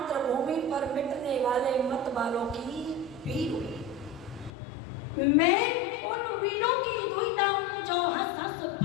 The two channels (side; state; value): right; drops out; at 4.5 s